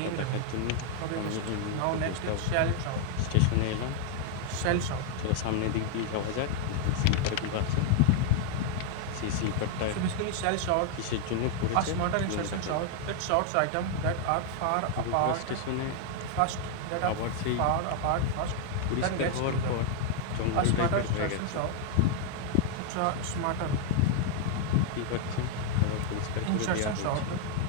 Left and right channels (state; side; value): different; both; correlation 0.00